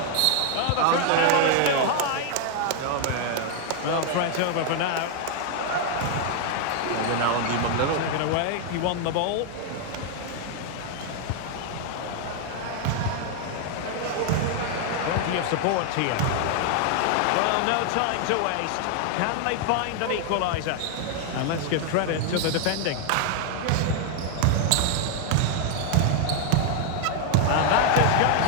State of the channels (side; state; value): both; different; correlation 0.00